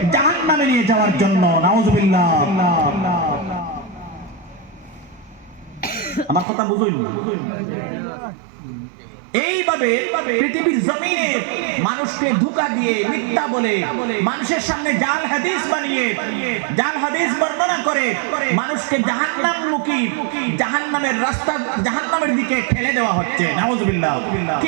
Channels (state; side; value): drops out; left; at 6.5 s